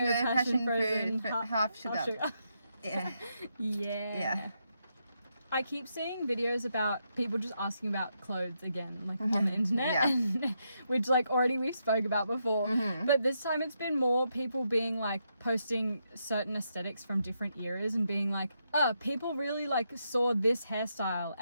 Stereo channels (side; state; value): both; inverted; correlation -0.81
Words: passion frozen half sugar. Yeah. Yeah. I keep seeing videos about people just asking about clothes again, like on the internet, which like already we've spoke about before. But this time it's been more people being like posting certain aesthetics from different eras and being like, people really like saw this hairstyle